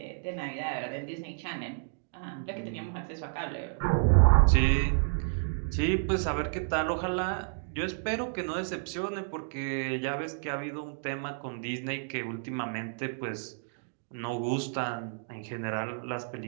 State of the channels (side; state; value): left; silent; digital silence